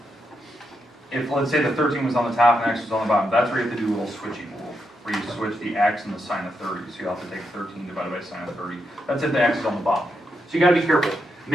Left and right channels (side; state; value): both; normal; correlation 0.83